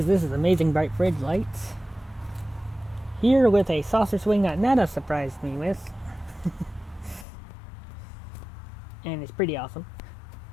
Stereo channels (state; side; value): drops out; right; at 7.2 s